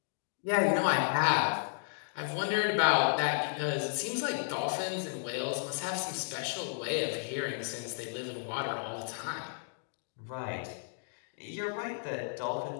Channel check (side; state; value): right; silent; digital silence